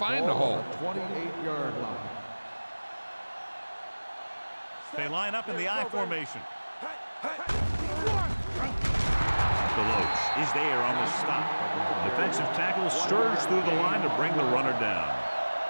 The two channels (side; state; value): both; inverted; correlation -1.00